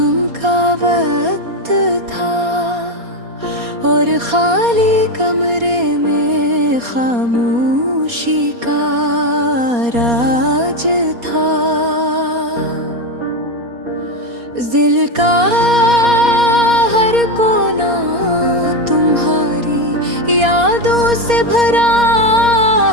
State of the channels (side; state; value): left; late; 4.2 ms